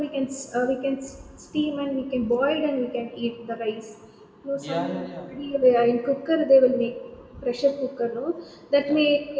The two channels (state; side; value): identical; both; correlation 1.00